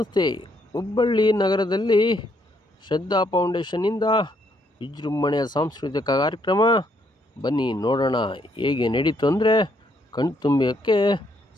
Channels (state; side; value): normal; both; correlation 0.72